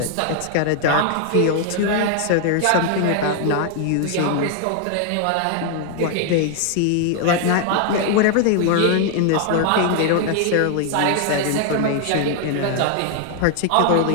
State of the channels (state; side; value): different; both; correlation 0.00